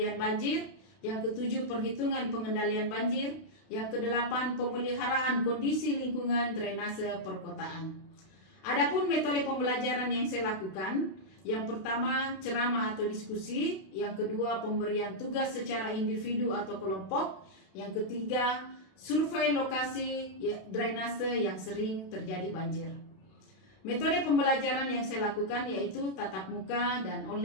banjir. Yang ketujuh, perhitungan pengendalian banjir. Yang kedelapan, pemeliharaan kondisi lingkungan drainase perkotaan. Adapun metode pembelajaran yang saya lakukan, yang pertama, ceramah atau diskusi. Yang kedua, pemberian tugas secara individu atau kelompok. Yang ketiga, survei lokasi drainase yang sering terjadi banjir. Metode pembelajaran yang saya lakukan yaitu tatap muka dan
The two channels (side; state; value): right; late; 32 ms